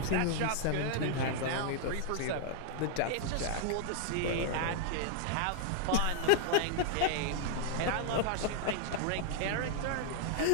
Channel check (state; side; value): different; both; correlation -0.01